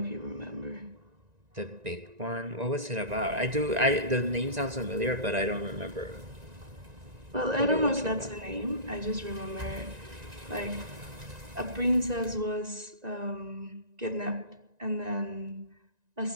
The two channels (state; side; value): late; left; 1.9 ms